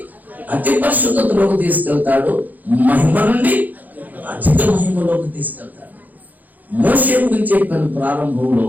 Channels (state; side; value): late; left; 0.082 ms